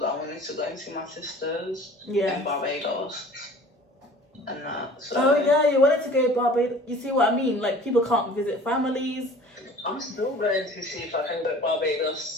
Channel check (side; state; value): both; normal; correlation 0.46